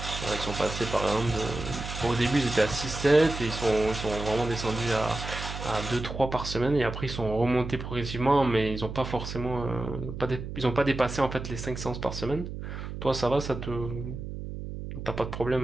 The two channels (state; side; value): noise; right; hum, 8 dB below the sound